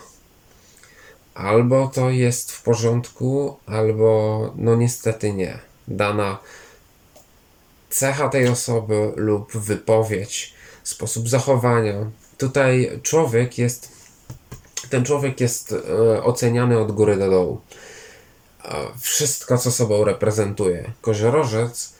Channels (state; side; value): identical; both; correlation 1.00